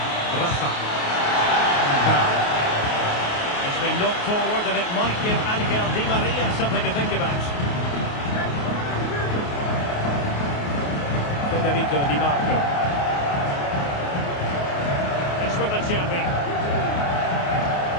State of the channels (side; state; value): right; late; 28 ms